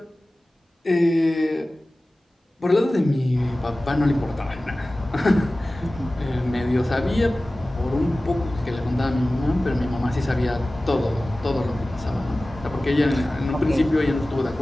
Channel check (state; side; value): normal; both; correlation 0.97